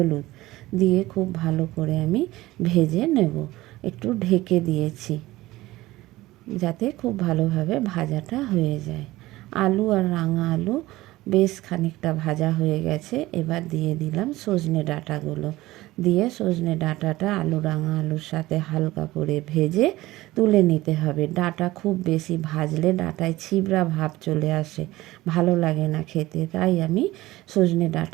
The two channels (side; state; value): left; quieter; 17.9 dB